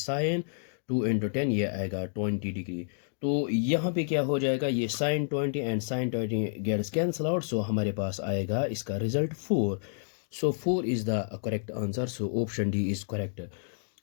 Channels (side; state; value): right; silent; digital silence